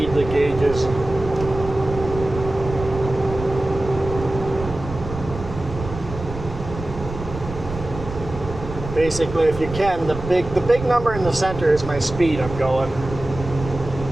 the gauges. Basically, if you can, the big number in the center is my speed I'm going.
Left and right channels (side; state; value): right; noise; rumble, 10 dB below the sound